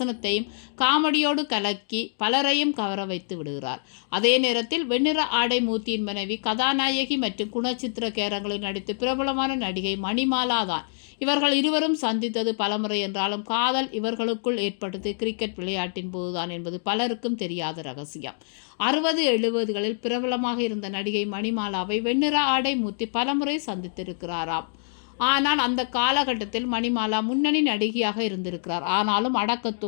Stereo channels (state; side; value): silent; right; digital silence